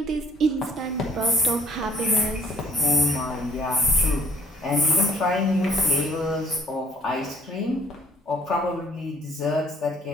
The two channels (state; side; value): normal; both; correlation 0.58